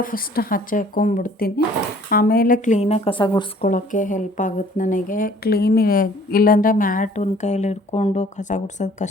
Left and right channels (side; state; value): both; normal; correlation 0.56